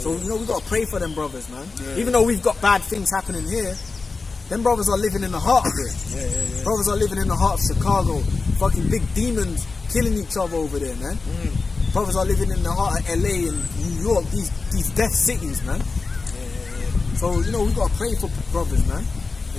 So you know, we gotta pray for them brothers, man. Even though we've got bad things happening here, them brothers are living in the heart of it. Brothers are living in the heart of Chicago. Fucking big demons killing each other over there, man. Brothers are living in the heart of LA and New York, these death cities, man. So you know, we gotta pray for brothers, man,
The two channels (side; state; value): right; quieter; 4.1 dB